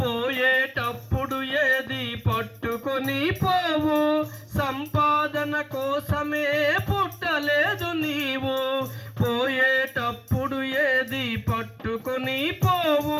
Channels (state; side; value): identical; both; correlation 1.00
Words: పోయేటప్పుడు ఏది పట్టుకొని పోవు. సంపాదన కోసమే పుట్టలేదు నీవు, పోయేటప్పుడు ఏది పట్టుకొని